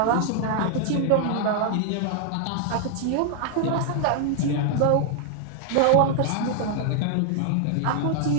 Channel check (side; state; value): both; different; correlation 0.00